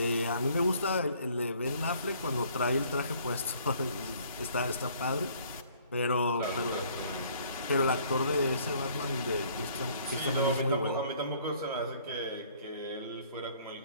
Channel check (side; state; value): both; inverted; correlation -0.59